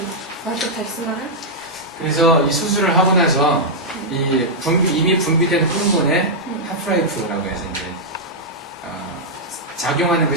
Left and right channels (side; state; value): both; normal; correlation -0.06